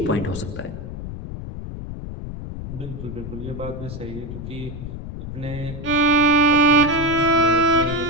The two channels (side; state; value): left; noise; rumble, 9 dB below the sound